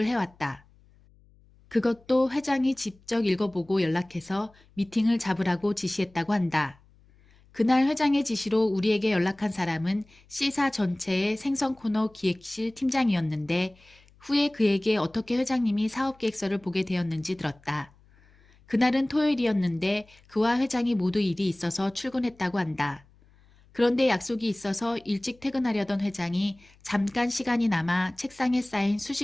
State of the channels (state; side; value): noise; left; hum, 29 dB below the sound